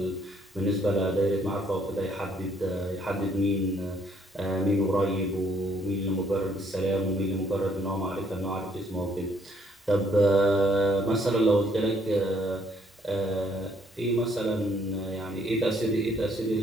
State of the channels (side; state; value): both; normal; correlation 0.67